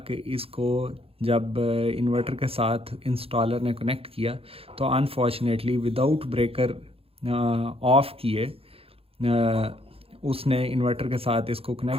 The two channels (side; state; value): left; late; 0.28 ms